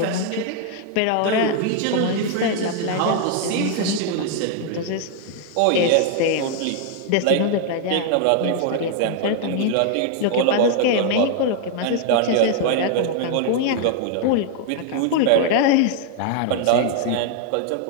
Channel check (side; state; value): both; different; correlation 0.00